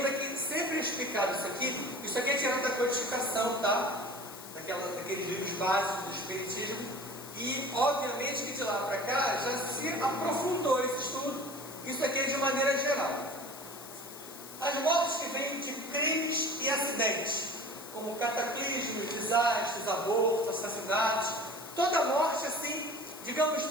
que sempre é explicado isso aqui é tirado da codificação, tá? Daqueles livros básicos do Espiritismo, e obviamente que de lá para cá já se aprofundou esse estudo, isso aqui é de maneira geral. As mortes que vêm de crimes e acidentes, como cataclismos, desastres, abortos, assassinatos, toda morte assim, digamos,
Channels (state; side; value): noise; left; hiss, 14 dB below the sound